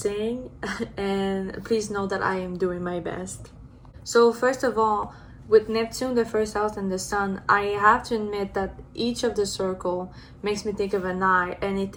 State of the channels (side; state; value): both; identical; correlation 1.00